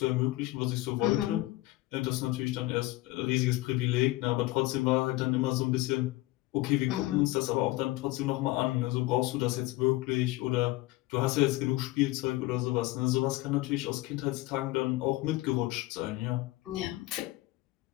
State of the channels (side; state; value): right; quieter; 18.9 dB